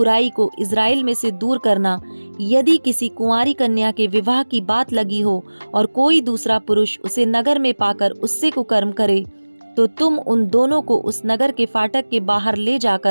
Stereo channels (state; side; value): inverted; both; correlation -1.00